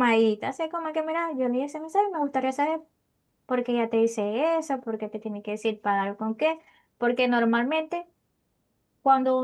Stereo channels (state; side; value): identical; both; correlation 1.00